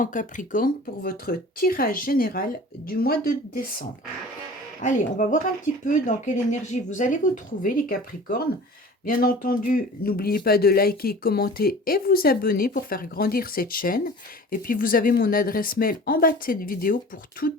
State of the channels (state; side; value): normal; both; correlation 0.42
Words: Capricorne pour votre tirage général du mois de décembre. Allez, on va voir un petit peu dans quelle énergie vous allez vous trouver, les Capricornes. Bien entendu, n'oubliez pas de liker, commenter et vous abonner pour faire grandir cette chaîne. Et puis, vous avez mon adresse mail en bas de cette vidéo pour